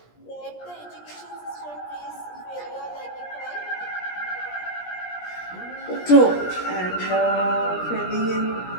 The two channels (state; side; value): late; right; 17 ms